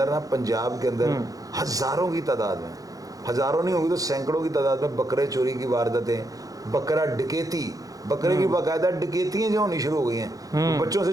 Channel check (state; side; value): late; left; 0.17 ms